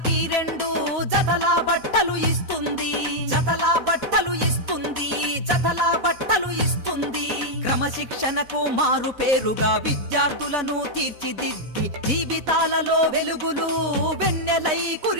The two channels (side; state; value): left; late; 4.1 ms